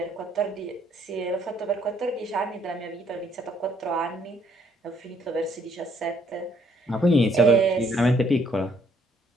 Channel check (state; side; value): normal; both; correlation 0.67